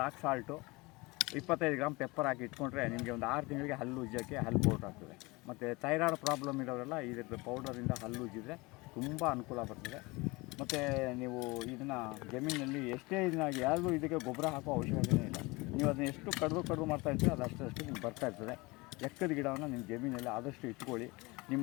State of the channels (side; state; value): right; quieter; 24.0 dB